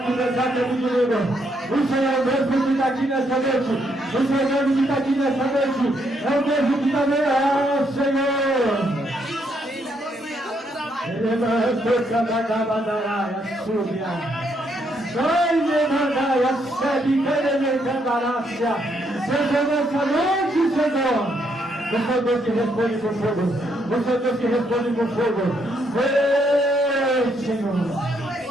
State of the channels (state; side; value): normal; both; correlation 0.74